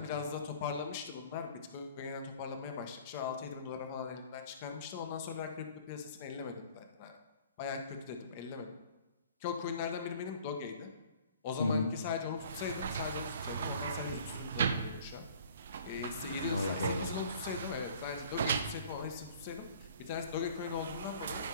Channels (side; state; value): both; inverted; correlation -0.50